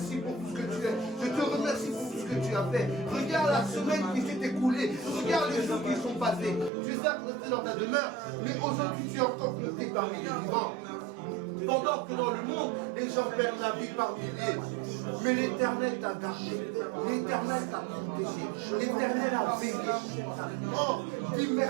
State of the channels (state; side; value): drops out; left; at 6.7 s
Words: pour tout ce que tu es. Je te remercie pour tout ce que tu as fait. Regarde la semaine qui s'est écoulée. Regarde les jours qui sont passés. Tu es certes resté dans ta demeure, mais aujourd'hui tu es encore compté parmi les vivants. Pendant que dans le monde, les gens perdent la vie par milliers. Mais l'Éternel t'a gardé. L'Éternel t'a protégé. L'Éternel a veillé. Oh, dis